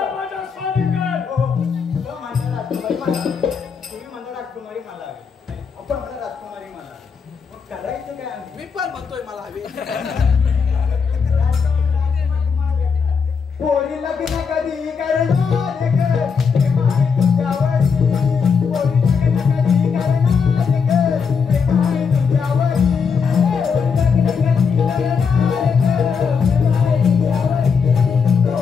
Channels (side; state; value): right; quieter; 5.9 dB